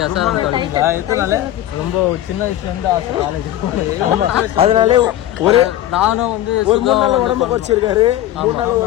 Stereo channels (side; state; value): right; quieter; 13.2 dB